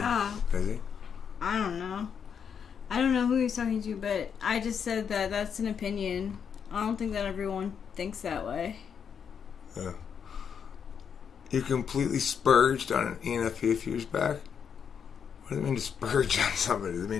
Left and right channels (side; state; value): right; quieter; 7.2 dB